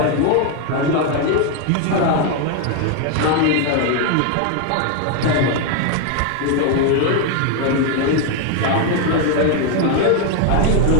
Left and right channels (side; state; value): both; different; correlation 0.01